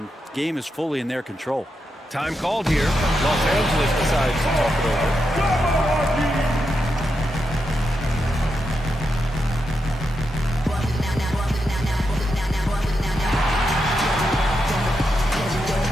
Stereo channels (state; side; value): normal; both; correlation 0.85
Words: game is fully in their control. Time called here. Los Angeles decides to talk it over.